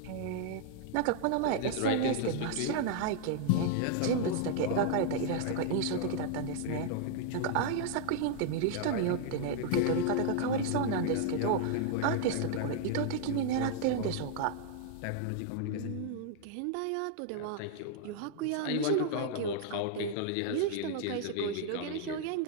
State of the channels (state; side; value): different; both; correlation 0.00